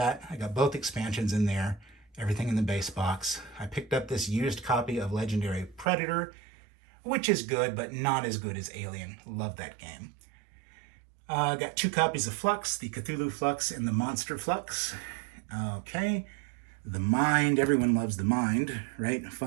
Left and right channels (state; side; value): drops out; left; at 5.9 s